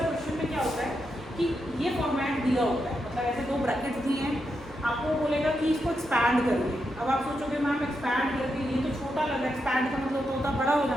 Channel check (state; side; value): normal; both; correlation 0.84